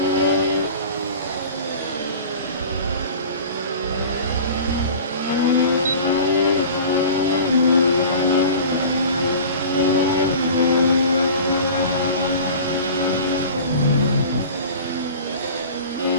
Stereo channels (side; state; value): both; inverted; correlation -0.39